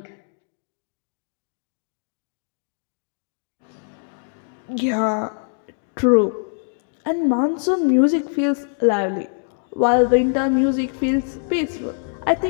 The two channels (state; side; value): silent; right; digital silence